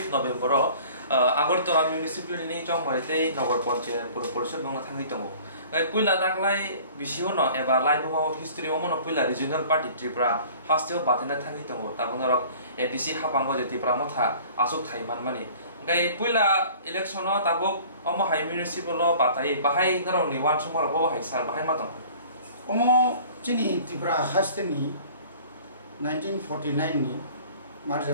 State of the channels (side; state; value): both; inverted; correlation -0.48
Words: नभेम्बर आगरतला म्युनिसिपालिटी चंगमरिते नगर पंचायत परिषद बंगला थांनि दङ पुइला दागलाय बिसिओ न एबा लाइबमाव हिस्ट्री ओमन पुइला रिजनल पार्टी त्रिपुरा हास्तियाव बाथेना थांनि दङ ताबुनरक एडीसी हापांगो जे त्रिपुरा मथा आसुक थाइमान माने गाय पुइला इलेक्शन ताबुक अम हाइ म्युनिसिपल बाथाय बाहाय नरनि वान समर बो हाइ सार बाहाय मा दङ अम चिनि त्रिपुरा हास्तिनि 1949 नि